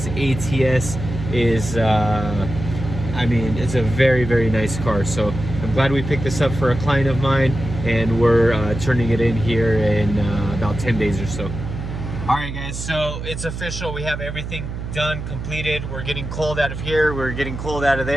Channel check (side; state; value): right; noise; hum, 7 dB below the sound